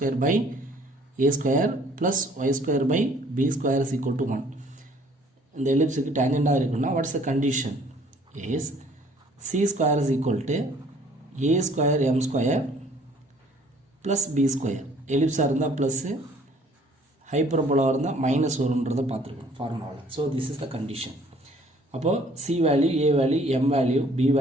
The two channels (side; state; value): both; normal; correlation 0.57